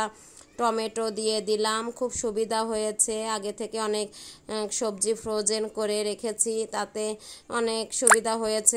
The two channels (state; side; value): identical; both; correlation 1.00